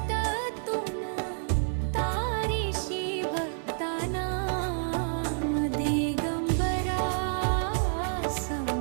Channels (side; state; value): left; silent; digital silence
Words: तारीशी भक्तांना दिगंबरा